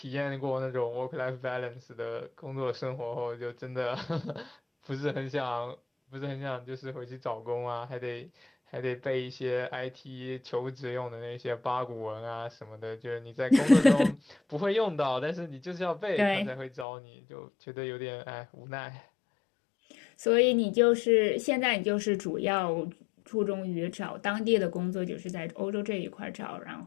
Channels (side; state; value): right; drops out; at 16.9 s